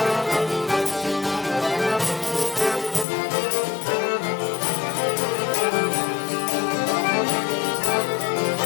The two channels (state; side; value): drops out; right; at 3.1 s